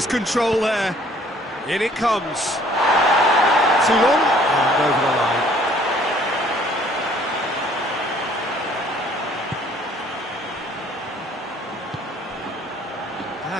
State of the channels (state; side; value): normal; both; correlation 0.58